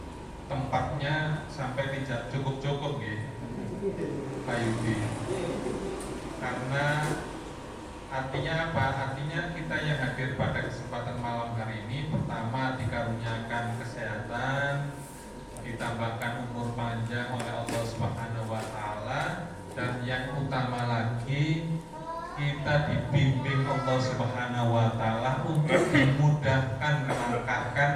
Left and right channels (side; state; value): both; identical; correlation 1.00